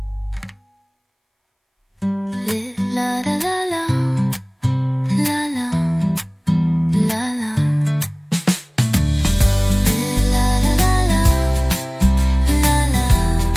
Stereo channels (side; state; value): both; identical; correlation 1.00